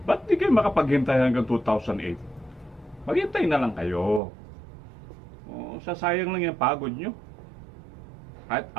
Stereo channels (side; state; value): left; drops out; at 4.2 s